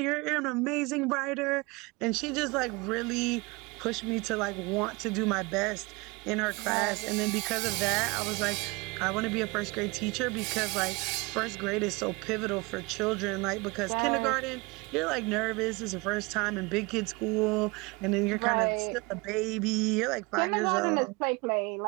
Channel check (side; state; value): left; quieter; 25.9 dB